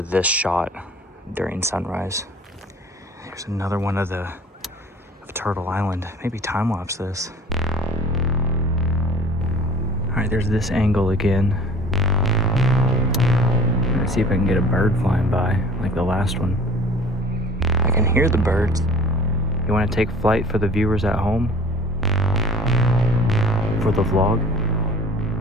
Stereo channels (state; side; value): normal; both; correlation 0.47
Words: this shot during sunrise. There's another one of Turtle Island. Maybe time-lapse this. All right, there's this angle again. Let's see if I can get a bird flying by, like the last one. I can hear the birds. You wanna take flight for the viewers at home? For the vlog?